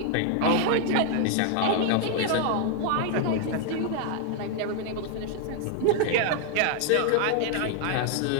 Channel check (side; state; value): both; different; correlation 0.00